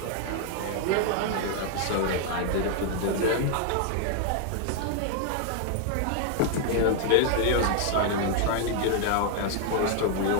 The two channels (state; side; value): different; both; correlation 0.00